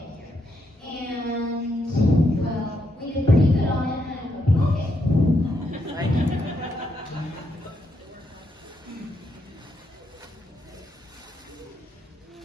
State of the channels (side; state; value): both; normal; correlation 0.79